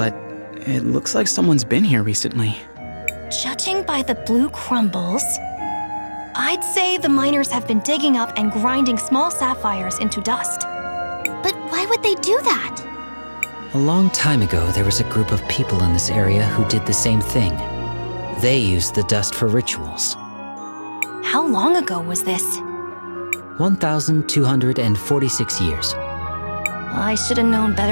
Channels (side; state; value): both; inverted; correlation -1.00